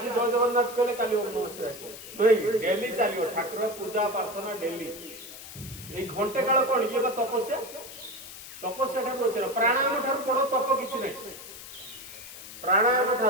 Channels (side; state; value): left; noise; hiss, 14 dB below the sound